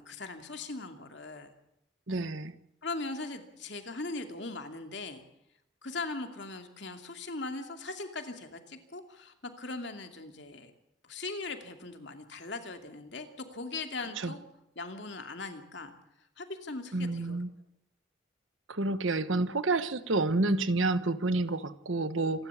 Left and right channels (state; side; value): normal; both; correlation 0.33